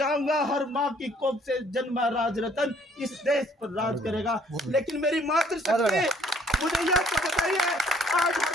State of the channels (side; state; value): both; normal; correlation 0.61